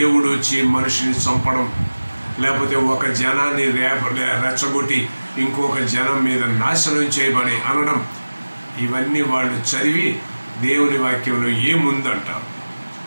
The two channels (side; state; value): both; inverted; correlation -1.00